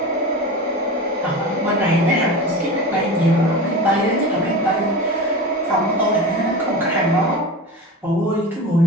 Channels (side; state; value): both; normal; correlation 0.29